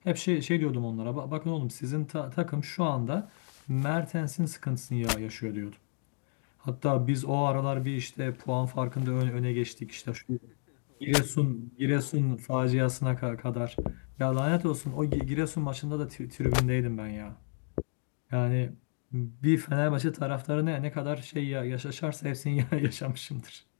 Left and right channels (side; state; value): right; silent; 57 dB below the other